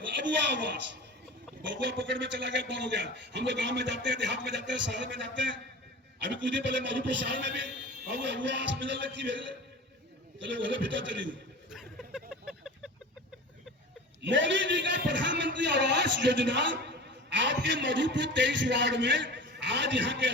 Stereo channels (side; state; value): both; normal; correlation 0.35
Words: आवास, बबुआ पकड़ में चला गया, बंद हो गया। हम लोग गांव में जाते हैं, देहात में जाते हैं, शहर में जाते हैं। अभी कुछ दिन पहले मधुपुर शहर में भी अबुआ आवास मिलने लगती भेजले, चलो बोले भीतर चली गई। मोदी जी का प्रधानमंत्री आवास योजना आपके मधुपुर 23 वार्ड में आज यहां के